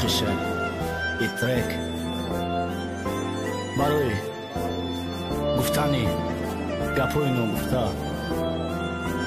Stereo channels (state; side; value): identical; both; correlation 1.00